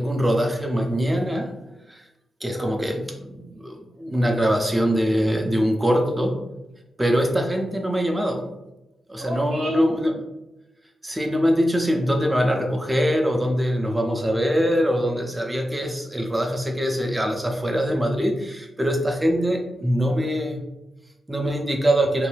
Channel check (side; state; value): both; normal; correlation 0.91